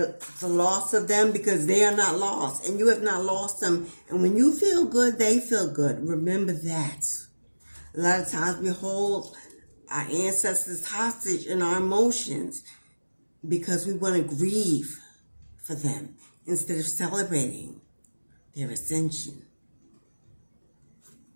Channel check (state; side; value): inverted; both; correlation -1.00